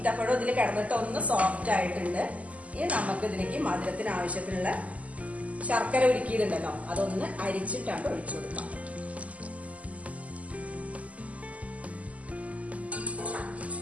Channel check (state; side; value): late; left; 0.070 ms